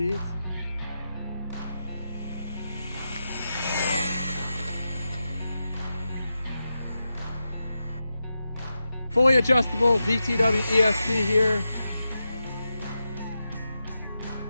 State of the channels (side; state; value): both; inverted; correlation -0.89